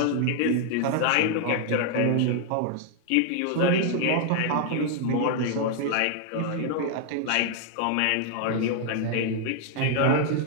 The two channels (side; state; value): both; different; correlation 0.00